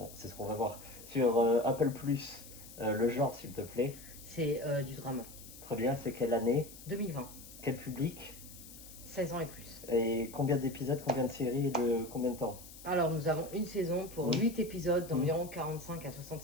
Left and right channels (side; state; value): left; noise; hiss, 16 dB below the sound